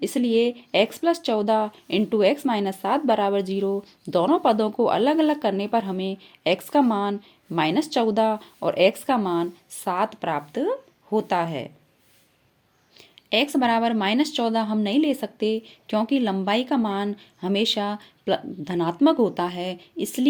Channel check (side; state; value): both; identical; correlation 1.00